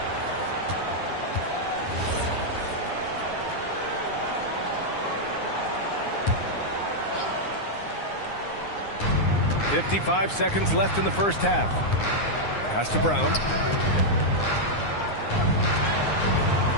.55 seconds left in the first half. Pass to Brown.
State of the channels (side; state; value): right; late; 9.7 ms